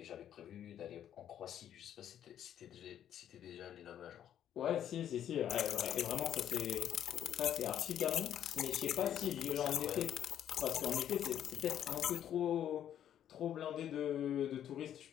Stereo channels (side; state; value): right; quieter; 10.3 dB